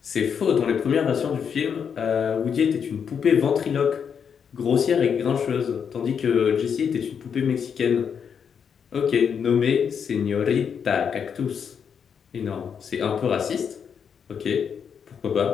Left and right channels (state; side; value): quieter; right; 7.1 dB